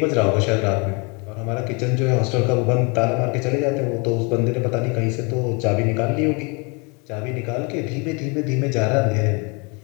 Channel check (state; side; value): quieter; right; 31.3 dB